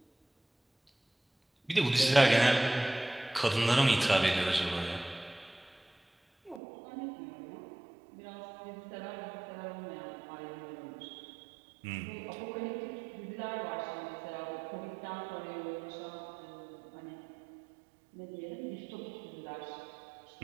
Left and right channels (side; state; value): left; drops out; at 6.6 s